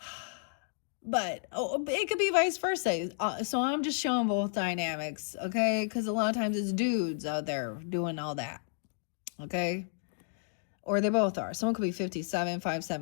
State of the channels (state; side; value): silent; right; digital silence